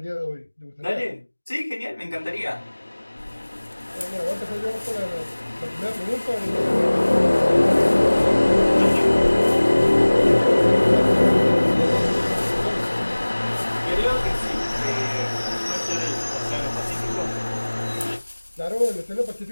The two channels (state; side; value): inverted; both; correlation -1.00